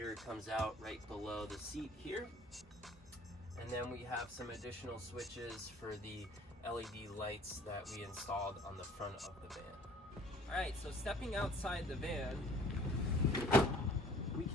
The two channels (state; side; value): normal; both; correlation 0.53